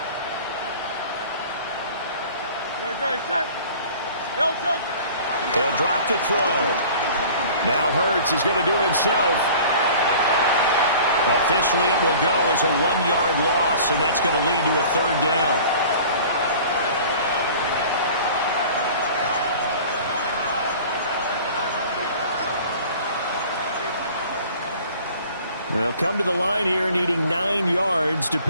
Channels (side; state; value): both; inverted; correlation -0.45